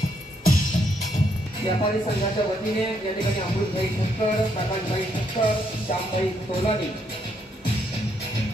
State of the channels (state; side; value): normal; both; correlation 0.74